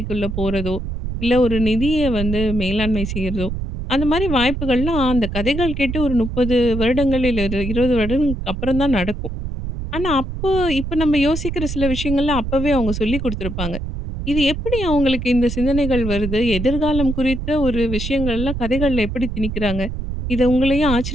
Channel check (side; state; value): right; noise; rumble, 5 dB below the sound